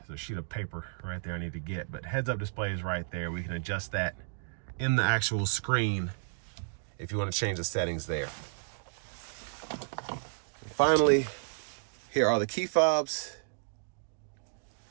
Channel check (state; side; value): silent; left; digital silence